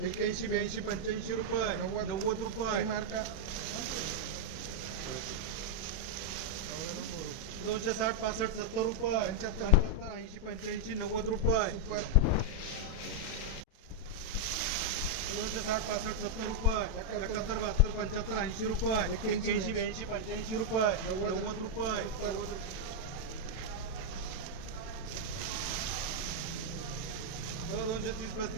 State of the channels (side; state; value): right; late; 32 ms